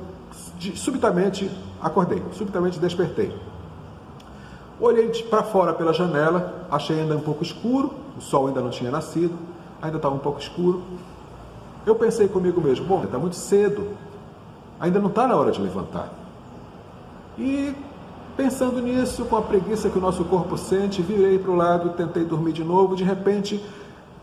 subitamente acordei, subitamente despertei. Olhei para fora pela janela, achei ainda um pouco escuro, o sol ainda não tinha nascido, ainda estava um pouco escuro. Eu pensei comigo mesmo, bom, está muito cedo, ainda não está na hora de levantar. E pensando nisso, com a preguiça que o nosso corpo sente, virei para o lado, tentei dormir de novo, de repente,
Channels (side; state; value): both; identical; correlation 1.00